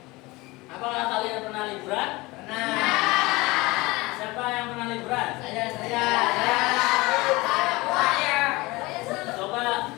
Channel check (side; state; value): right; quieter; 22.1 dB